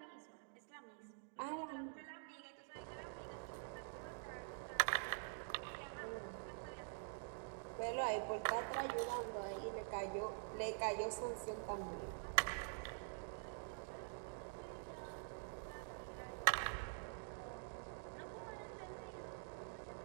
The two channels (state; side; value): silent; left; digital silence